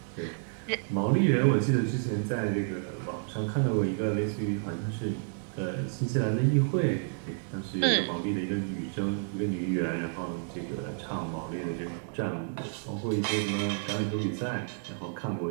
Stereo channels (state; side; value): silent; left; digital silence